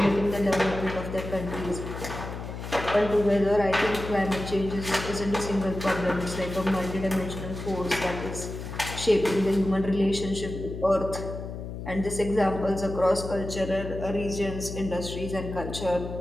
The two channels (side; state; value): left; noise; hum, 8 dB below the sound